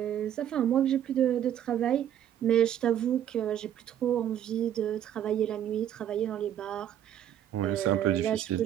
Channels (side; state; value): left; quieter; 10.4 dB